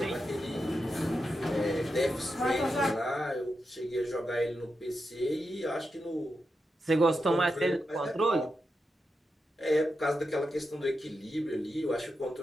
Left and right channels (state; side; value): normal; both; correlation 0.88